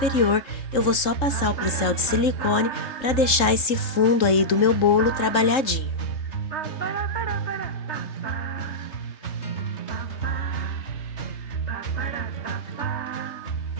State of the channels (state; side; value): late; right; 3.7 ms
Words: eu vou só passar o pincel de silicone para deixar esse fundo aí do meu bolo trabalhadinho.